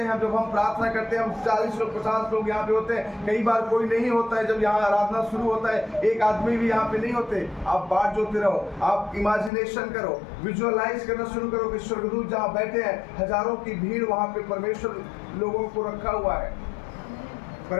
हैं, जब हम प्रार्थना करते हैं, हम 40 लोग 50 लोग यहाँ पे होते हैं, कई बार कोई नहीं होता है। जब यहाँ आराधना शुरू होता है, एक आदमी भी यहाँ पे नहीं होते। आप बाट जोते रहो, आप इमेजिनेशन करो, विजुअलाइज करना शुरू करो कि स्वर्गदूत जहाँ बैठे हैं, हजारों की भीड़ वहाँ पे परमेश्वर लोगों को रखा हुआ है।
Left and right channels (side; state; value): right; drops out; at 9.5 s